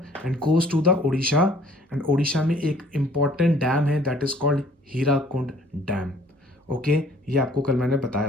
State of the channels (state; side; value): normal; both; correlation 0.56